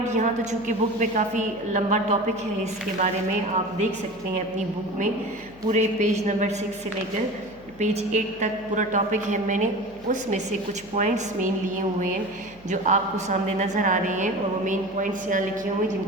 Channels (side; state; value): left; noise; hum, 23 dB below the sound